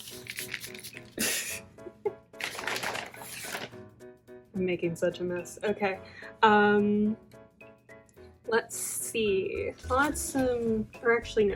I'm making such a mess. Okay. Let's see. I'll add some, or actually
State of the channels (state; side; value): identical; both; correlation 1.00